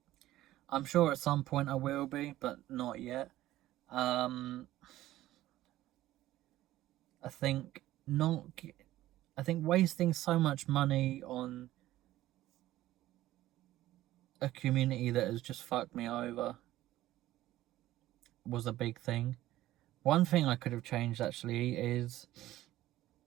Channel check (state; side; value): quieter; left; 15.0 dB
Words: I'm sure at some point I will be, but not yet. I think wasting so much money on a community that has just fucked me over was a big thing. One thing I could have changed actually is